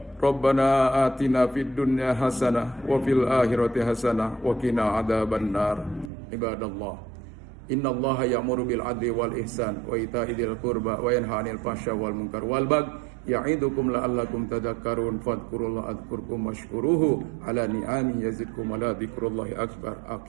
Rabbana atina fid dunya hasanah wa fil akhirati hasanah wa qina adzabannar. Ibadallah, innallaha ya'muru bil adli wal ihsan wa ita'i dzil qurba wa yanha 'anil fahsya wal munkar wal baghi ya'idukum la'allakum tadhakkarun fadhkurullaha adhkurkum washkuruhu ala ni'ami yazidkum wa la dzikrullahi akbar.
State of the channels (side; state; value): left; drops out; at 6.1 s